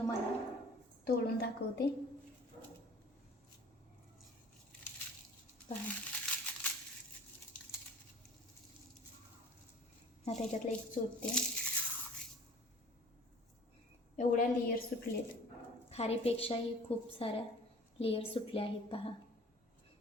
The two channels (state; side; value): normal; both; correlation 0.46